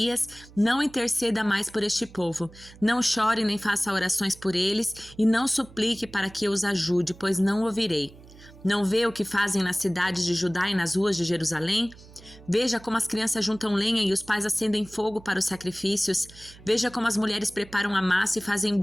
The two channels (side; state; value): right; noise; hum, 21 dB below the sound